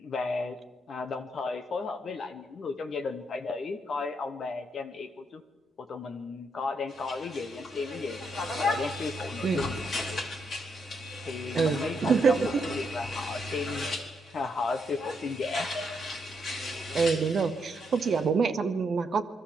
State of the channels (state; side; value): normal; both; correlation 0.78